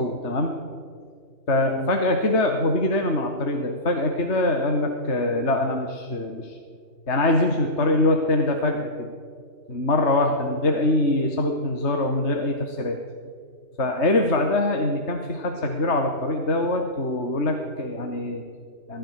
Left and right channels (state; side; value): late; right; 3.2 ms